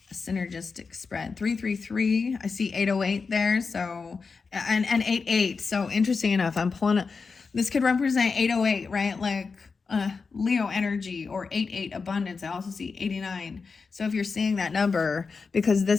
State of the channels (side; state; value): right; quieter; 4.8 dB